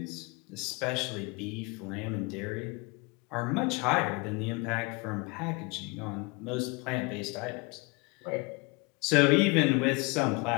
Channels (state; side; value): quieter; right; 28.2 dB